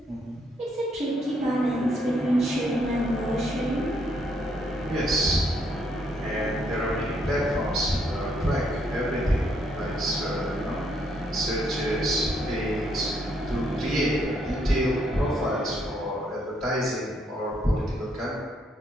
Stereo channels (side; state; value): both; normal; correlation 0.72